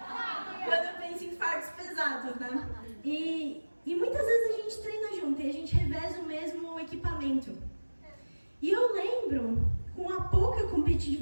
quando eu penso em fardos pesados, né? E muitas vezes a gente treina junto e a gente reveza o mesmo equipamento. E eu lembro, com a pouca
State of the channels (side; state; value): both; inverted; correlation -1.00